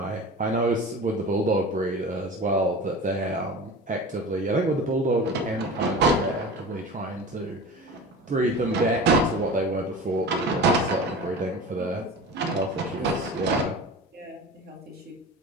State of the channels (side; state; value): both; normal; correlation 0.34